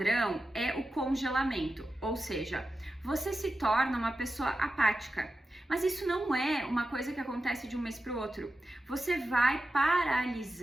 é o congelamento, ou seja, você se torna uma pessoa apática. Mas isso não é uma coisa que acontece de um mês para o outro. Você vai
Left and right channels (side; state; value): both; normal; correlation 0.92